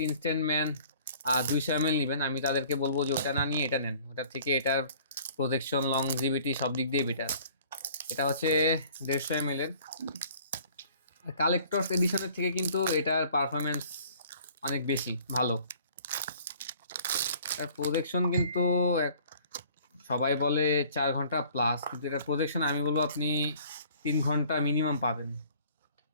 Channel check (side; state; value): both; inverted; correlation -0.53